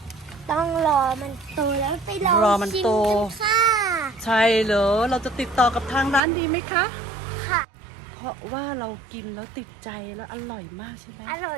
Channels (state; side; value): drops out; left; at 6.2 s